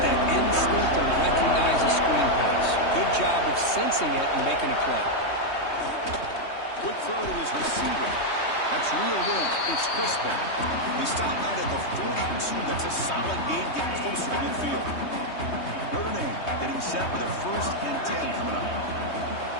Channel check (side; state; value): right; late; 3.2 ms